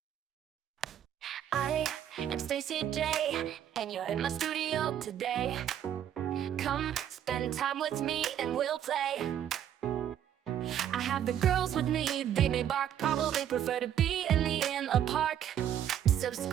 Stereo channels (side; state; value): left; quieter; 10.1 dB